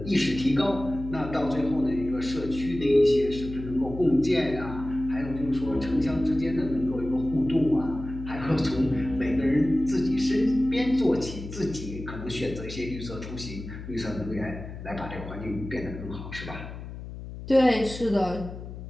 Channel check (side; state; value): left; noise; hum, 11 dB below the sound